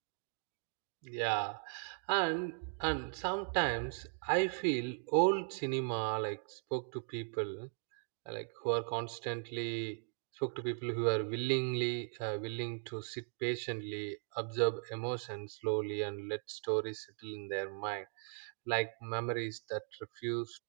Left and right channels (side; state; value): left; silent; 52 dB below the other